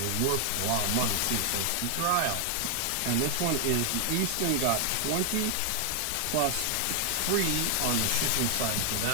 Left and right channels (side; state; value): both; different; correlation 0.00